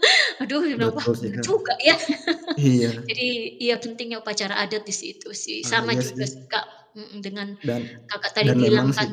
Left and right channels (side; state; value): both; identical; correlation 1.00